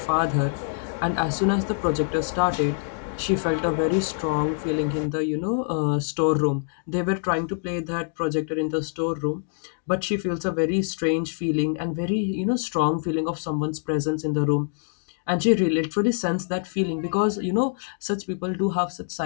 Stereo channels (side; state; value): right; silent; digital silence